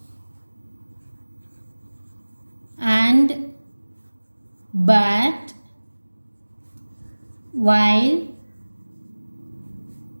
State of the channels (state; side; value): inverted; both; correlation -1.00